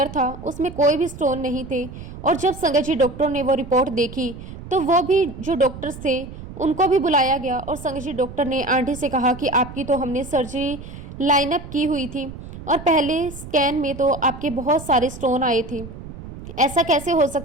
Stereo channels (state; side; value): noise; right; rumble, 13 dB below the sound